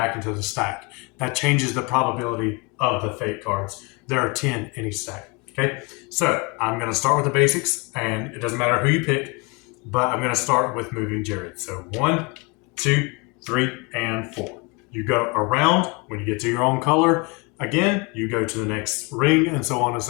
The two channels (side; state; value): right; quieter; 29.3 dB